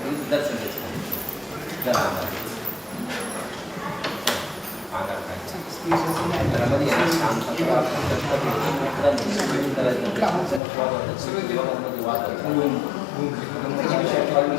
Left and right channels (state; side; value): drops out; right; at 10.6 s